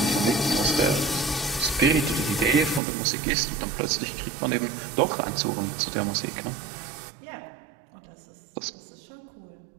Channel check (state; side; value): drops out; left; at 2.8 s